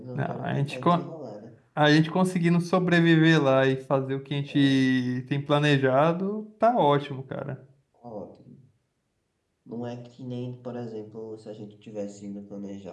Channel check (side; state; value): both; identical; correlation 1.00